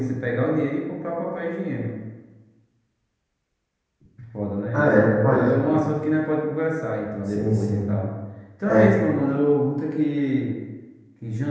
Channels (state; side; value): identical; both; correlation 1.00